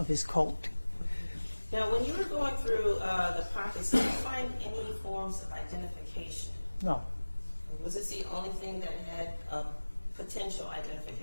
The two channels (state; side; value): inverted; both; correlation -1.00